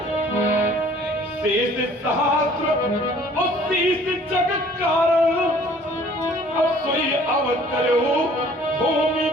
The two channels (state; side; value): normal; both; correlation 0.54